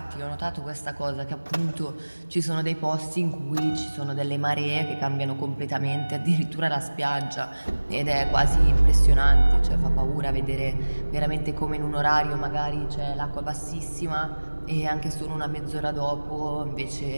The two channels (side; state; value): both; inverted; correlation -1.00